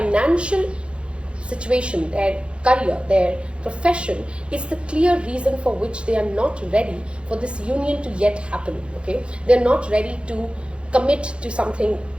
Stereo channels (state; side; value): late; left; 0.058 ms